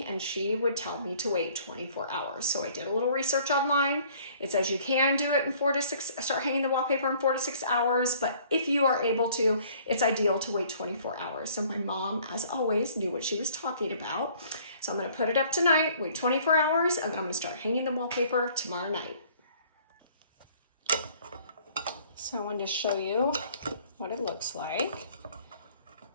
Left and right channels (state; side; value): inverted; both; correlation -0.56